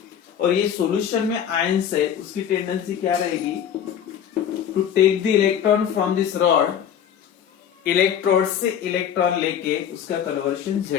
और ये सॉल्यूशन में आयंस है, उसकी टेंडेंसी क्या रहेगी, to take the electron from this rod, electrode से इलेक्ट्रॉन लेके उसका कन्वर्शन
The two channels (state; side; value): quieter; right; 8.9 dB